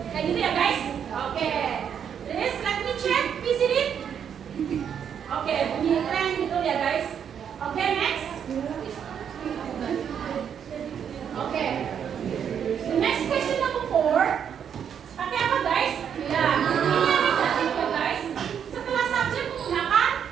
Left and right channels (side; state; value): left; quieter; 8.2 dB